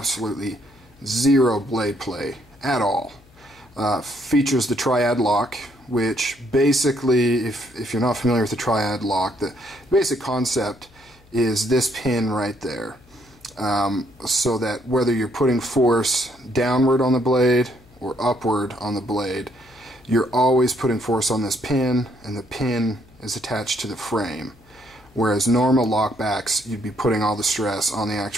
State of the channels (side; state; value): left; noise; hum, 28 dB below the sound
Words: zero blade play at all. Features the triad lock, which basically, if you're not familiar with the triad lock, the basic concept is this pin right there. So that whether you're putting force downward on the blade or upward on the blade, you're always putting force on this pin, and the pin is attached to the frame. Whereas normal lockbacks, you'd be putting all the stress on the